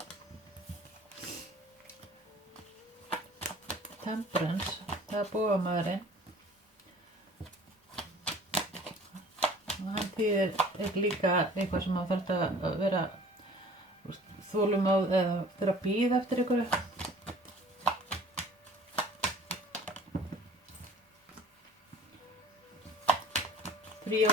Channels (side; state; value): both; normal; correlation 0.48